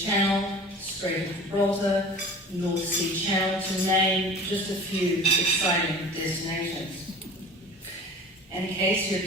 Channel, Strait of Gibraltar, North Sea Channel, to name just a few exciting destinations. And in case you're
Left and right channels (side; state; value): both; normal; correlation 0.39